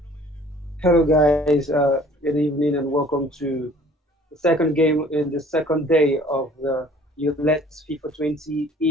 Hello, guys. Good evening, and welcome to the second game in the second day of the ULES FIFA 20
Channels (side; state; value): both; normal; correlation 0.52